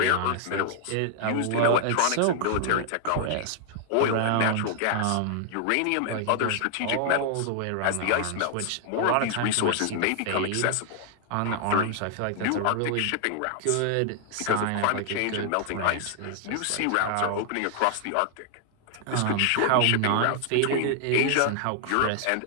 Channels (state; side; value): different; both; correlation 0.00